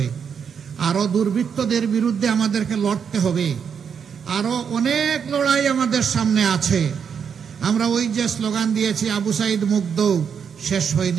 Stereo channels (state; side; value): quieter; left; 7.0 dB